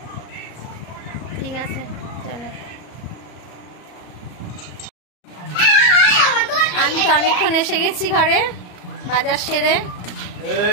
ঠিক আছে চলো। আমি তো অনেকক্ষণ এসে গেছি ঘরে, বাজার সেরে।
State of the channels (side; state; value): right; late; 34 ms